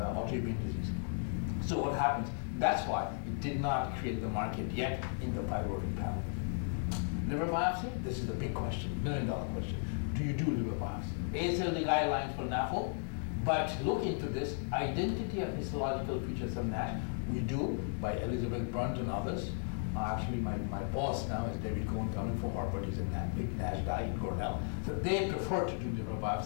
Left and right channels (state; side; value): silent; right; 54 dB below the other